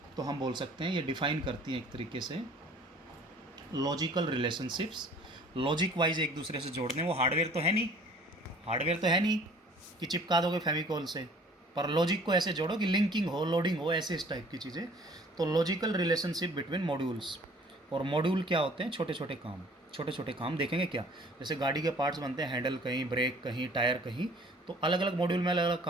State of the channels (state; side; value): normal; both; correlation 0.52